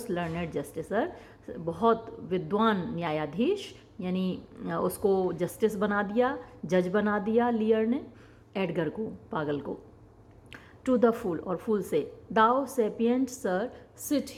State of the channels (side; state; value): both; identical; correlation 1.00